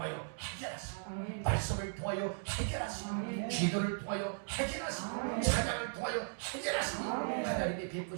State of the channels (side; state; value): left; silent; digital silence